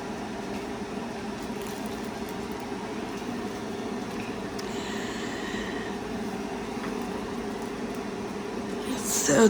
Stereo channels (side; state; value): both; identical; correlation 1.00